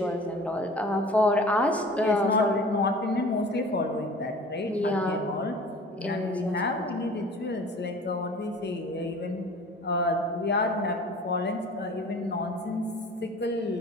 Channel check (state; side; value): normal; both; correlation 0.44